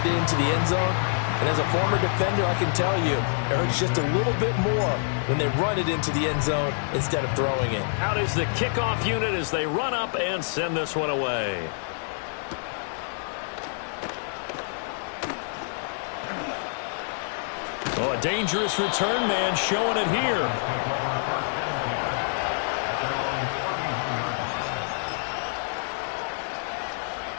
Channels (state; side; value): silent; right; 60 dB below the other